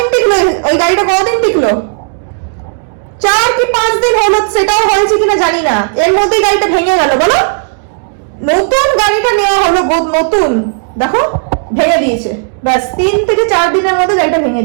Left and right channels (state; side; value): silent; left; digital silence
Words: টিকলো ওই গাড়িটা, কদিন টিকলো? 4 কি 5 দিন হলো, সেটাও হয়েছে কিনা জানি না, এর মধ্যেই গাড়িটা ভেঙে গেল। বলো, নতুন গাড়িটা নেওয়া হলো, নতুন, দেখো ভেঙে দিয়েছে। ব্যাস 3 থেকে 4 দিনের মধ্যে গাড়িটা ভেঙে